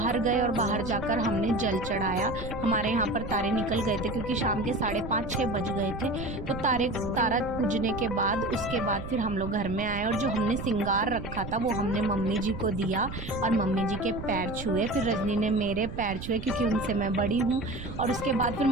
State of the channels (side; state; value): right; noise; rumble, 9 dB below the sound